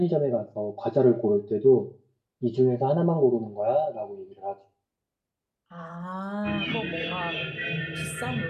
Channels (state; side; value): identical; both; correlation 1.00